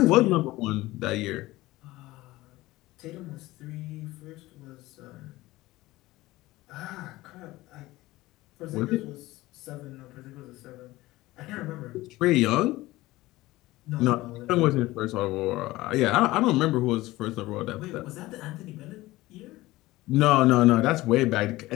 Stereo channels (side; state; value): right; quieter; 18.4 dB